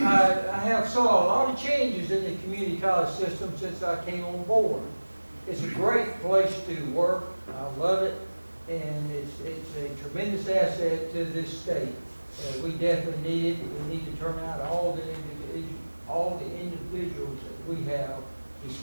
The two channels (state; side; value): inverted; both; correlation -1.00